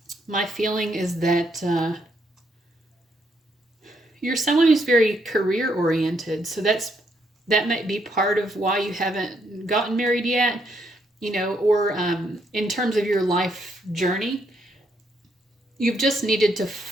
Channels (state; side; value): normal; both; correlation 0.74